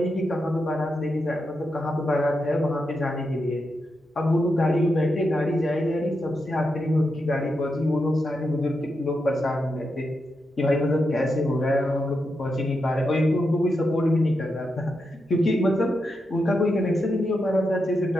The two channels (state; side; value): normal; both; correlation 0.86